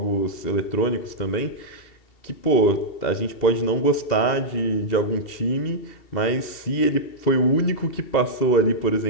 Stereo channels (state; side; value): late; right; 2.7 ms